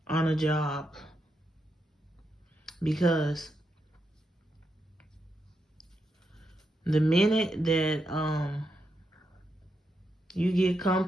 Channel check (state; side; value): normal; both; correlation 0.84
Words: on a job because the minute that you get